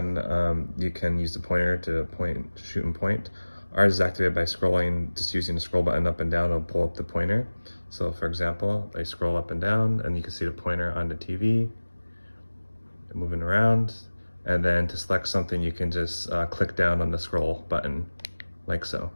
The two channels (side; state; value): both; inverted; correlation -1.00